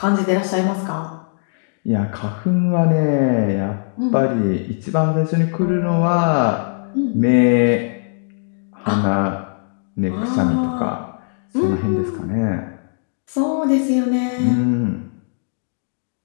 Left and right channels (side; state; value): right; silent; digital silence